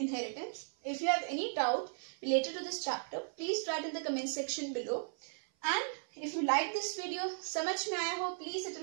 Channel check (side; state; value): left; silent; 54 dB below the other